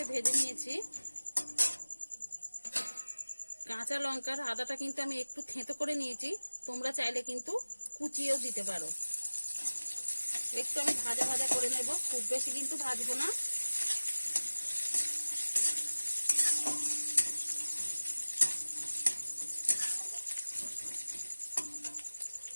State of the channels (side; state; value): both; inverted; correlation -1.00